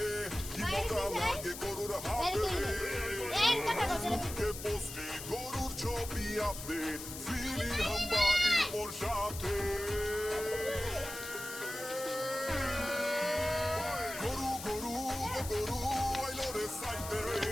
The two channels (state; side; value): noise; left; hiss, 10 dB below the sound